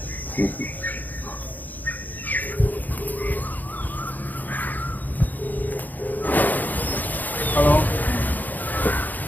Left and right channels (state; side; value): late; right; 0.084 ms